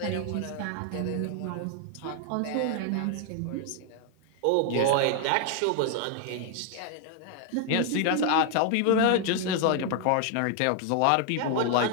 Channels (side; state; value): both; different; correlation 0.00